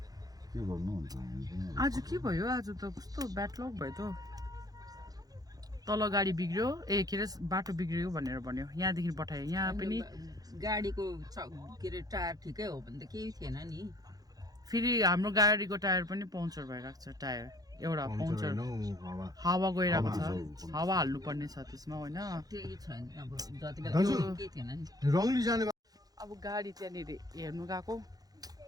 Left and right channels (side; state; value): left; late; 0.18 ms